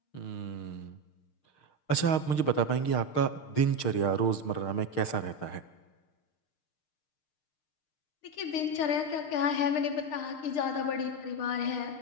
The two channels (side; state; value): right; late; 6.6 ms